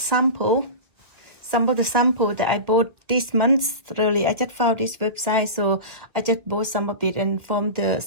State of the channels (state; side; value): late; left; 2.1 ms